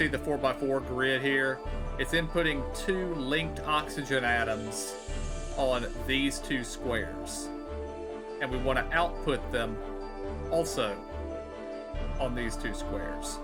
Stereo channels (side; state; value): both; identical; correlation 1.00